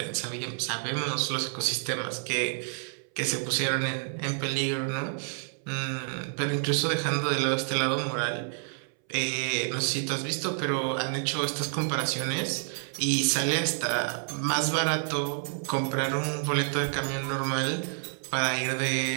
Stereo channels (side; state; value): left; silent; 59 dB below the other